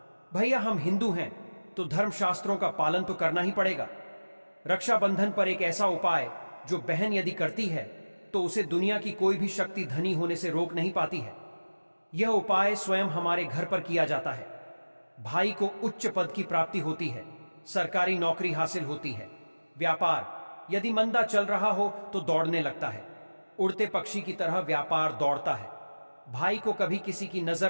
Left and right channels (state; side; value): inverted; both; correlation -1.00